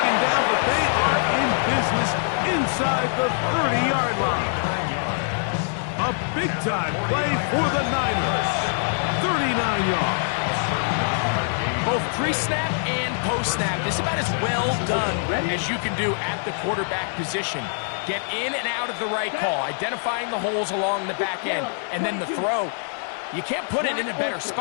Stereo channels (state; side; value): silent; right; digital silence